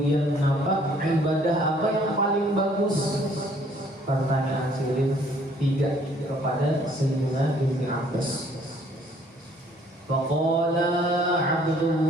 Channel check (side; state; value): both; normal; correlation 0.60